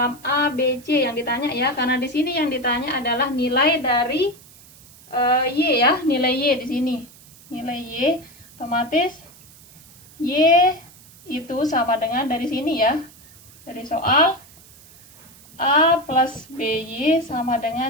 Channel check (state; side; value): noise; right; hiss, 24 dB below the sound